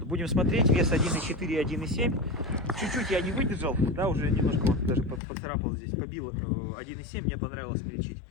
будем смотреть, вес 1.4 и 1.7. Чуть-чуть я не выдержал, да, уже немножко вот даже поцарапал здесь, побил 1.7, мне понравилось смельчить.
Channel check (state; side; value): drops out; right; at 5.2 s